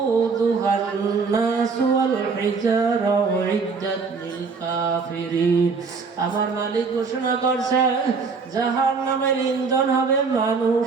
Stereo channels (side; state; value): left; quieter; 4.9 dB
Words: নাস ওয়াল হিজারা উইদ্দাত লিল কাফিরিন, আমার মালিক ঘোষণা করছে জাহান্নামের ইন্ধন হবে